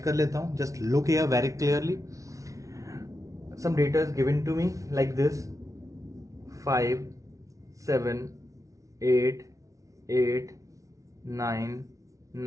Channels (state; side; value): late; left; 0.16 ms